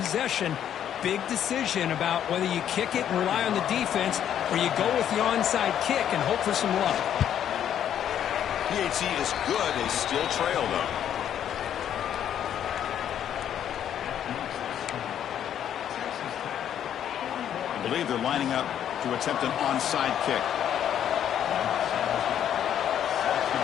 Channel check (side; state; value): right; quieter; 9.9 dB